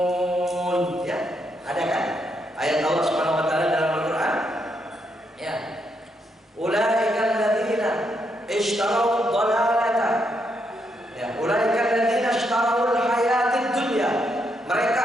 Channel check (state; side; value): normal; both; correlation 0.78